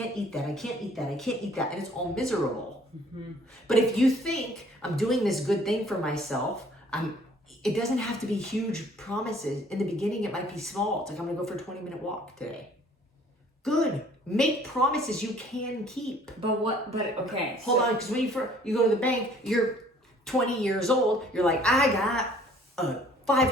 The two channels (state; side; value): normal; both; correlation 0.56